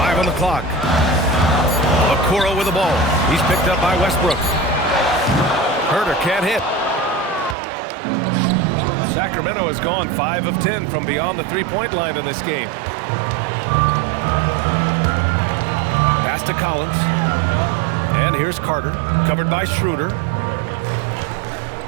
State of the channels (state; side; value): drops out; left; at 7.6 s